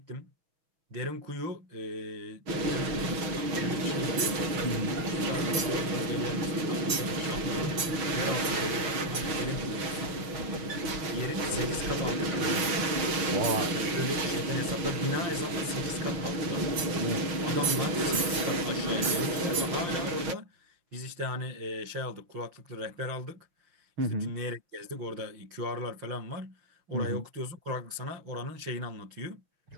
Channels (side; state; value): left; late; 6.3 ms